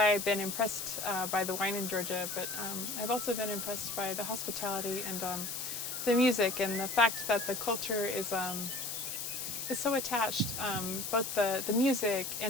been impressed by the wine in Georgia, but I've also been impressed by the hospitality and the music, and the fact that the culture is so attached. Both the music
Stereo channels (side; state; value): left; noise; hiss, 4 dB below the sound